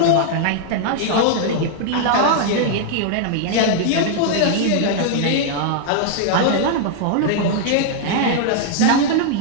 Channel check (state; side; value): different; both; correlation 0.00